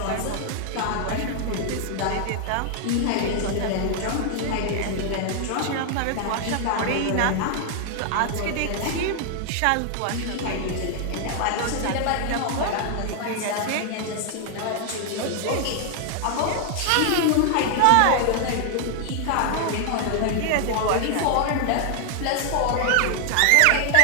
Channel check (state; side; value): different; both; correlation -0.01